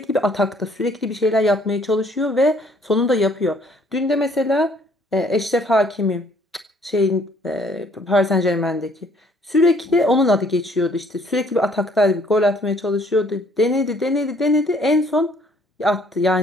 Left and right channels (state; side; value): normal; both; correlation 0.62